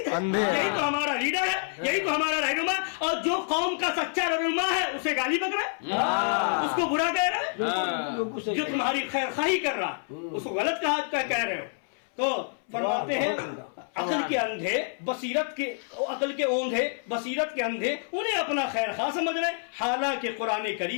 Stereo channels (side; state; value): right; silent; 60 dB below the other